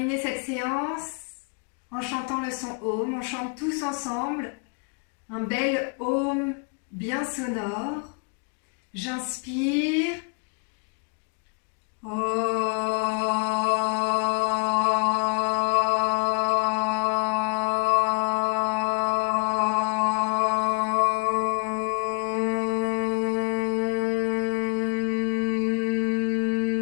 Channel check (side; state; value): right; quieter; 33.6 dB